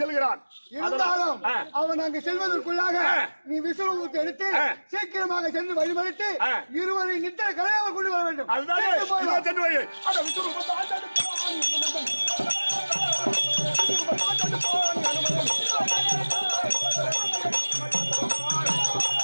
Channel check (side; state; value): both; inverted; correlation -1.00